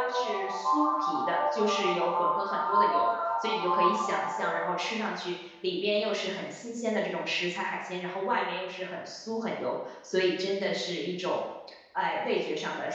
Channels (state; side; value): identical; both; correlation 1.00